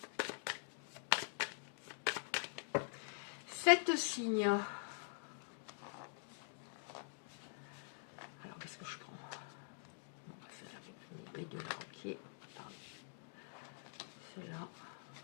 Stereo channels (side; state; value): right; silent; digital silence